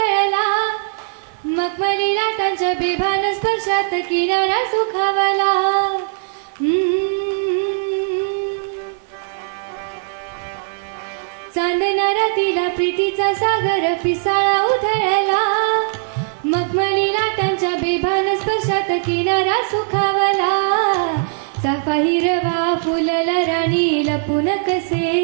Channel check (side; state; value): left; silent; digital silence